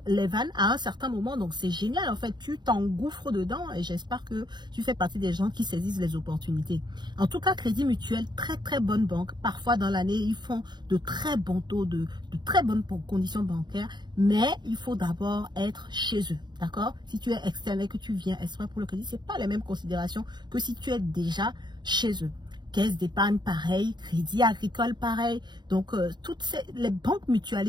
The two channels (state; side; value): late; left; 0.21 ms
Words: à un certain moment. Donc, c'est génial. En fait, tu t'engouffres dedans et j'espère que tu fais partie des gens qui saisissent les opportunités. En tout cas, Crédit Mutuel, très, très bonne banque. Parfois, dans l'année, ils font de très bons taux, de très bonnes conditions bancaires. Mais il faut d'abord être chez eux. D'accord? Si tu es externe et que tu viens exprès pour le crédit, ce n'est pas les mêmes considérations que si tu es déjà chez eux. Caisse d'épargne pareil, Crédit Agricole pareil. Donc, les banques